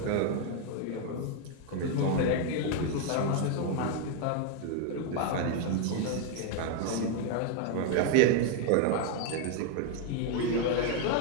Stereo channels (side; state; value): both; different; correlation 0.01